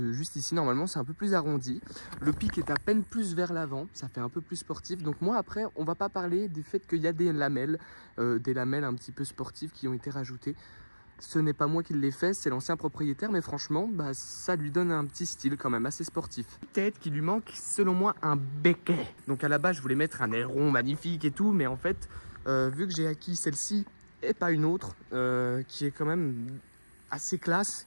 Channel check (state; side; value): inverted; both; correlation -1.00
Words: ici, normalement c'est un peu plus arrondi. Le pic est à peine plus vers l'avant, ça fait un peu plus sportif. Donc moi après, on va pas parler du fait qu'il y a des lamelles un petit peu sportives qui ont été rajoutées. Ce n'est pas moi qui l'ai fait, c'est l'ancien propriétaire, mais franchement, bah, ça lui donne un petit style quand même assez sportif. Peut-être qu'il lui manque, selon moi, un béquet. Donc à la base, je voulais mettre un aileron magnifique et tout, mais en fait, vu que j'ai acquis celle-ci et pas une autre, qui est quand même assez